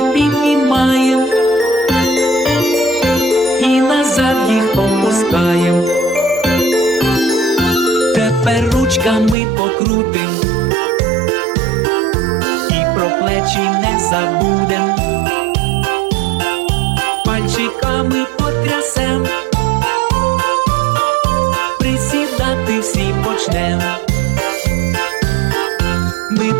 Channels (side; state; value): left; drops out; at 9.3 s